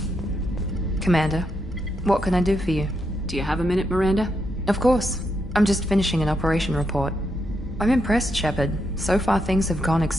Commander, what can I do for you? Do you have a minute, Miranda? Of course. I'm just finishing an operation report. I'm impressed, Shepard. So far things have gone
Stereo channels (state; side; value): normal; both; correlation 0.81